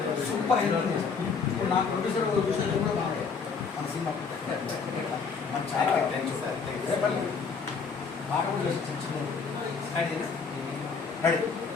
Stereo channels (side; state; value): right; quieter; 5.3 dB